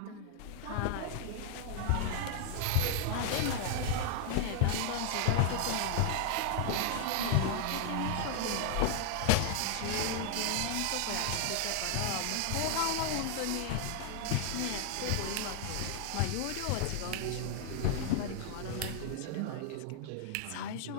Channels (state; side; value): different; both; correlation 0.00